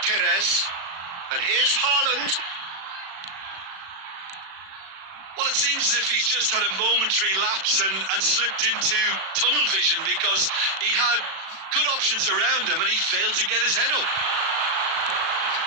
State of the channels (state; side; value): late; left; 36 ms